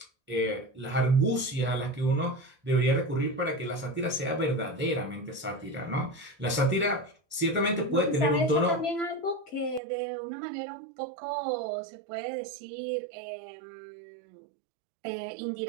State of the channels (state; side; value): drops out; left; at 9.8 s